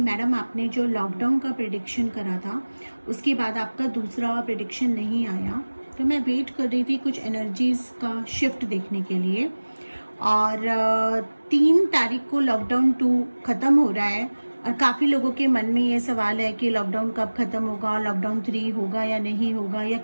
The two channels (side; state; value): both; inverted; correlation -1.00